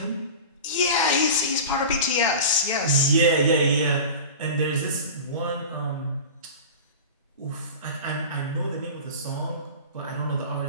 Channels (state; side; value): inverted; both; correlation -0.32